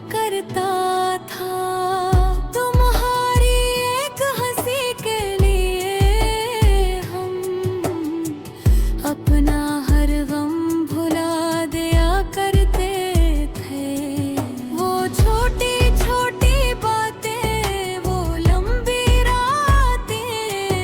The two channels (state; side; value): identical; both; correlation 1.00